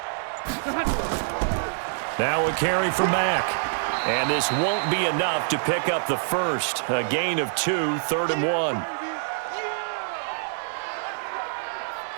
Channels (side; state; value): left; silent; 57 dB below the other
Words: Now a carry for Mack. And this won't be enough to pick up the first. A gain of 2, 3rd and 1.